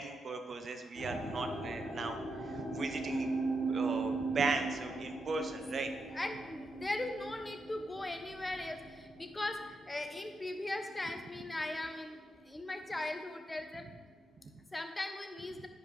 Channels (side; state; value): both; normal; correlation 0.85